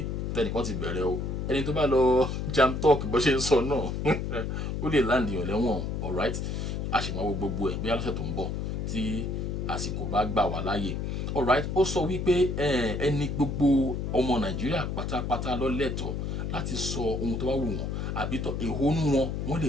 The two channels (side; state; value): left; noise; hum, 2 dB below the sound